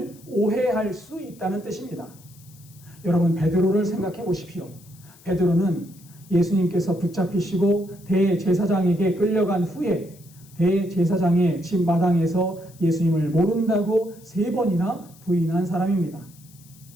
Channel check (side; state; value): left; noise; hiss, 25 dB below the sound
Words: 오해할 수 있다는 뜻입니다. 여러분, 베드로를 생각해 보십시오. 베드로는 예수님께서 붙잡히시고 대제사장에게 끌려간 후에 대제사장의 집 마당에서 예수님을 모른다고 3번이나 부인한 사람입니다.